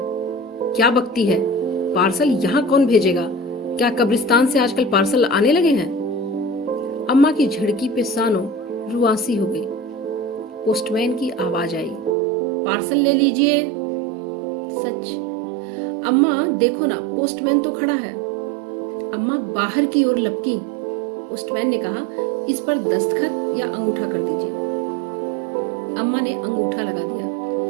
बकती है? पार्सल यहाँ कौन भेजेगा? क्या कब्रिस्तान से आजकल पार्सल आने लगे हैं? अम्मा की झिड़की पे सानो रुआसी हो गई। पोस्टमैन की आवाज आई, पार्सल ले लीजिए। सच। अम्मा देखो ना, पोस्टमैन तो खड़ा है। अम्मा बाहर की ओर लपकी। पोस्टमैन ने कहा, इस पर दस्तखत या अंगूठा कर दीजिए। अम्मा ने अंगूठा लगा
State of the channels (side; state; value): left; drops out; at 12.2 s